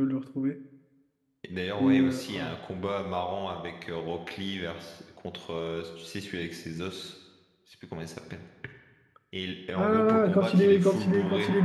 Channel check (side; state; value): both; identical; correlation 1.00